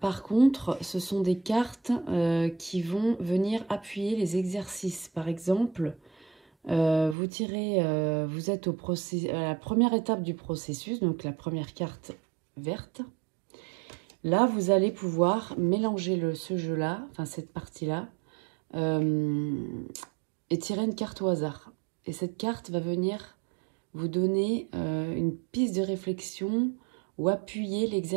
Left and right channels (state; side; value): drops out; left; at 7.2 s